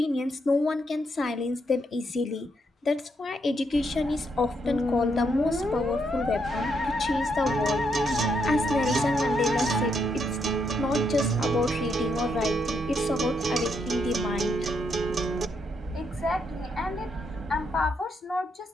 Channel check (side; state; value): both; normal; correlation 0.77